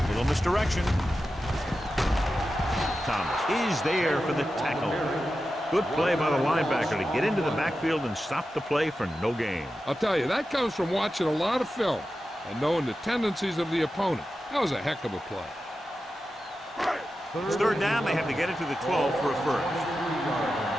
Little misdirection. Thomas is there for the tackle. Good play by the linebacker to get into the backfield and stop the play for no gain. I'll tell you, that comes from watching a lot of film and knowing the tendencies of the opponent. That was a heck of a play. It's third down. They have to get it to the 12 for a first.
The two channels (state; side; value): normal; both; correlation 0.91